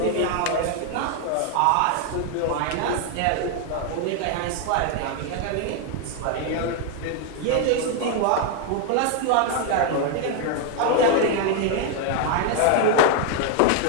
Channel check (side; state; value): both; different; correlation 0.00